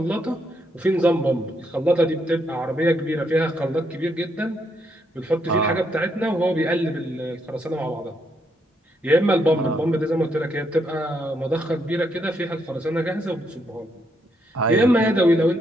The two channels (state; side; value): normal; both; correlation 0.76